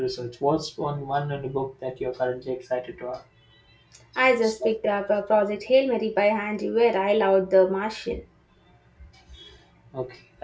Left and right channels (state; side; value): identical; both; correlation 1.00